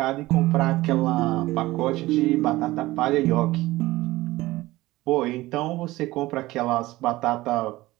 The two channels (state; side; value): quieter; left; 18.4 dB